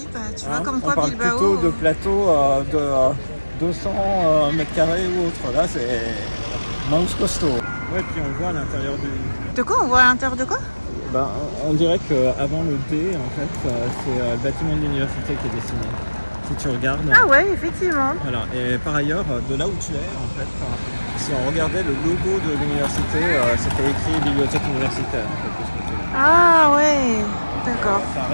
bah, tu vois comme quoi on parle Bilbao... plutôt de plateaux de 200 mètres carrés ou autre. Là, c'est manche costaud. Ouais, puis on voit à l'intérieur du... De quoi? On voit à l'intérieur de quoi? Ben, on dirait qu'avant le D, en fait, c'est le bâtiment de l'université qui est dessiné. Si tu regardes... Ah ouais, effectivement. Voilà. Et par ailleurs, de là où tu es, en fait, si on regardait le logo de l'université, c'était écrit bibliothèque universitaire. En fait, de ce côté. Ah ouais, d'accord. Ça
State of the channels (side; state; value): both; inverted; correlation -1.00